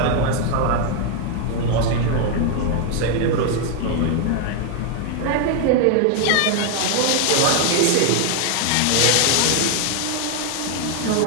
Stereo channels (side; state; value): both; different; correlation 0.00